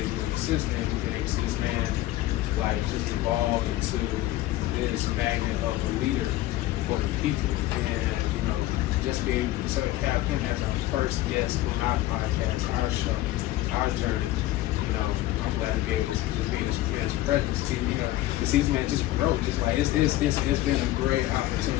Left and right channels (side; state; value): right; quieter; 15.9 dB